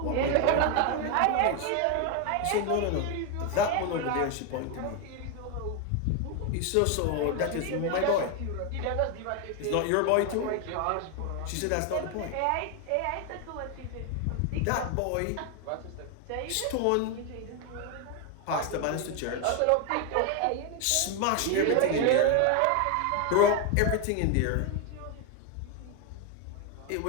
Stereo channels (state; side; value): different; both; correlation 0.01